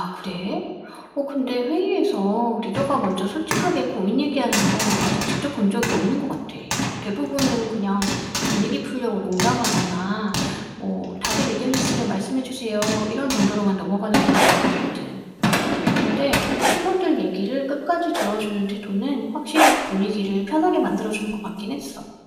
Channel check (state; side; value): identical; both; correlation 1.00